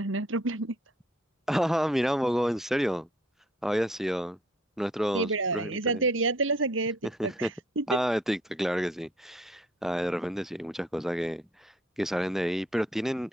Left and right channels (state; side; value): normal; both; correlation 0.59